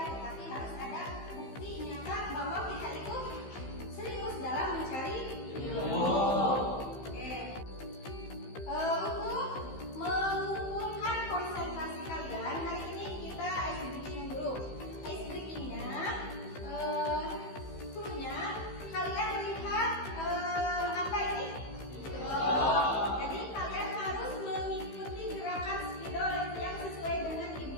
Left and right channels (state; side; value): late; right; 15 ms